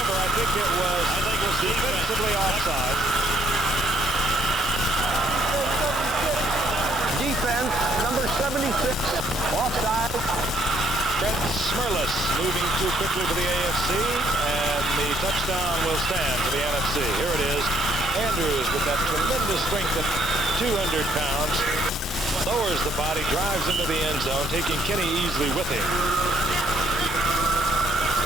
I think it was defensively offside. Defense, number 76, offside. Brett Smerlis moving too quickly for the AFC, and the touchdown will stand for the NFC. Here it is. Andrews with that tremendous strength of 200 pounds. Lowers the body, drives into the end zone, taking Kenny Easley with him.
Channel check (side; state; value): both; normal; correlation 0.66